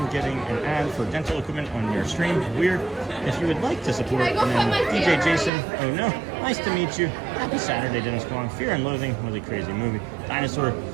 getting an ad for dental equipment on your stream. Weird. If you would like to support, and then DJ Jason. Oh no, nice to meet you. Happy Saturday, Dennis Kwong. Fear and Loathing was a crazy movie. Dinosaur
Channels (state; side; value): drops out; left; at 5.5 s